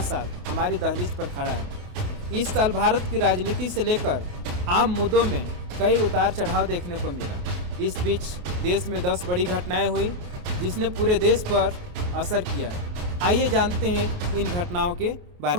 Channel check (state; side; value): late; left; 28 ms